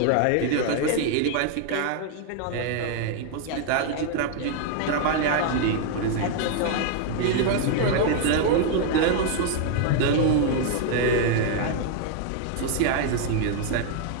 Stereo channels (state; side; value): different; both; correlation 0.00